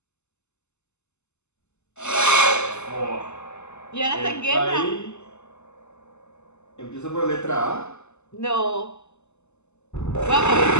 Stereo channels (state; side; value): late; right; 0.82 ms